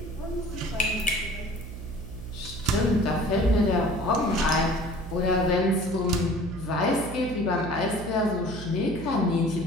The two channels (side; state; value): right; noise; hum, 10 dB below the sound